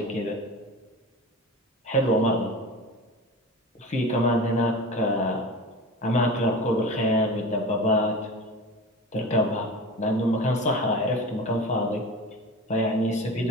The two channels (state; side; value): normal; both; correlation 0.32